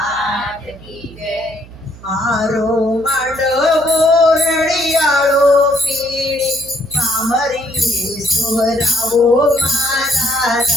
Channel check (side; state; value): right; noise; hum, 20 dB below the sound